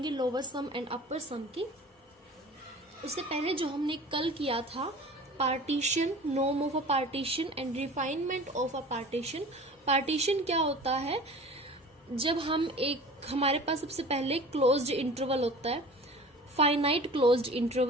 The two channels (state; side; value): normal; both; correlation 0.41